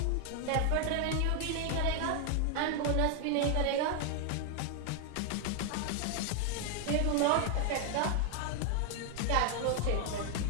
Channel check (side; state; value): both; different; correlation 0.00